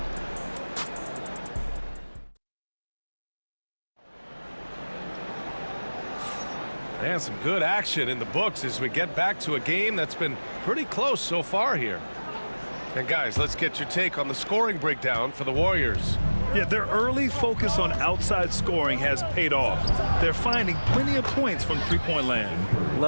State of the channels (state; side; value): inverted; both; correlation -1.00